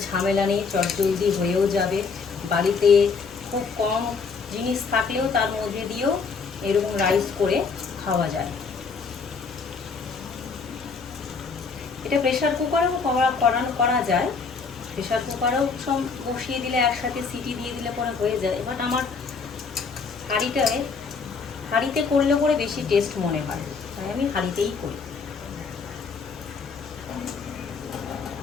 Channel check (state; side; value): quieter; right; 5.0 dB